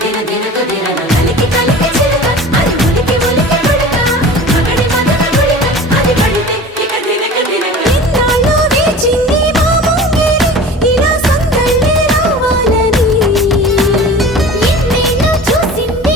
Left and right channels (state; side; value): normal; both; correlation 0.38